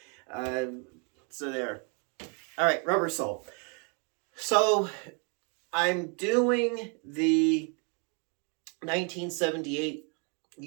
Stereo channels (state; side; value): quieter; left; 36.5 dB